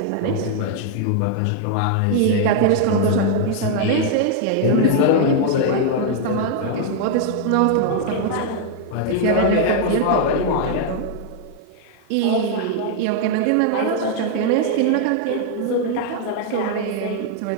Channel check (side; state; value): both; different; correlation 0.00